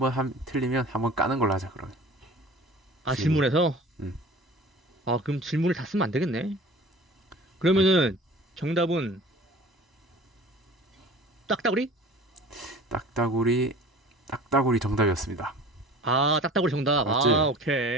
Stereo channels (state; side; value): normal; both; correlation 0.43